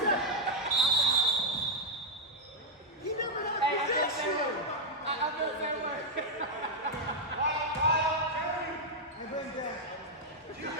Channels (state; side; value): normal; both; correlation 0.00